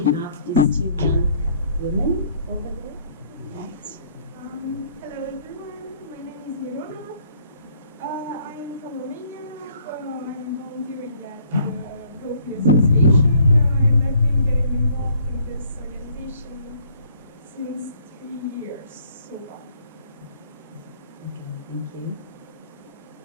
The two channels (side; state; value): both; inverted; correlation -0.61